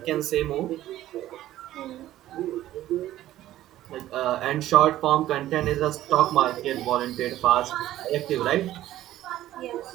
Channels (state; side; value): quieter; left; 14.0 dB